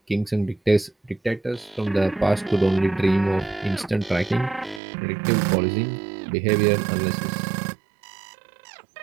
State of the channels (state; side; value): drops out; left; at 4.8 s